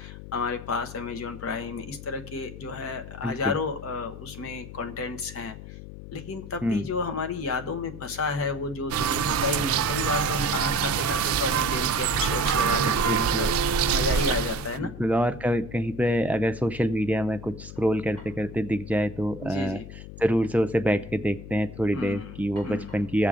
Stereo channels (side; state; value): left; noise; hum, 13 dB below the sound